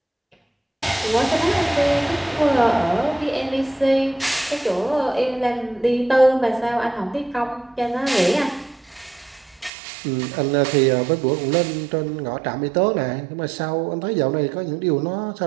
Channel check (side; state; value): left; drops out; at 9.7 s